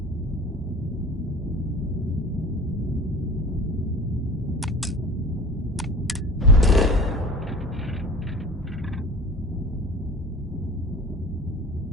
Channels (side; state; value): both; normal; correlation 0.40